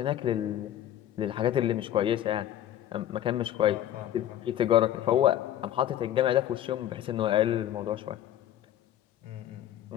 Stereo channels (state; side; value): quieter; right; 11.8 dB